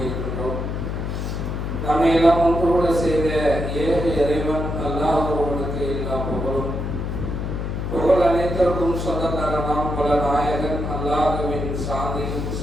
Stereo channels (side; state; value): left; noise; hum, 3 dB below the sound